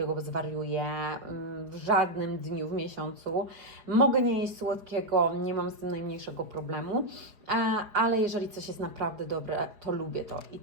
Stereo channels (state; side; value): late; left; 4.9 ms